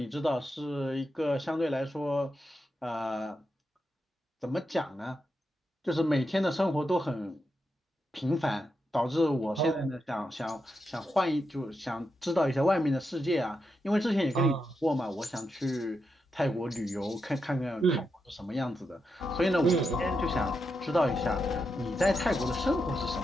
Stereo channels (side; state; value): both; normal; correlation 0.85